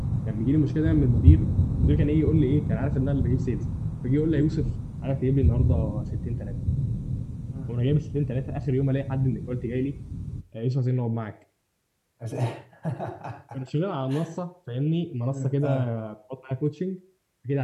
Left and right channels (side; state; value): both; identical; correlation 1.00